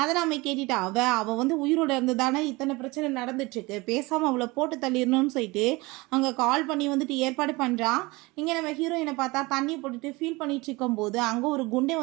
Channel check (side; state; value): left; quieter; 23.3 dB